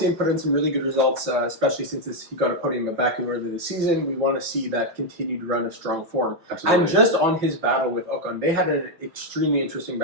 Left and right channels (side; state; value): left; late; 5.4 ms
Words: him put in some really good results, especially since he got a podium at Baku earlier this season. We want to see that continued run of strong form. Absolutely. And just on his battle with Ocon, they had an extremely interesting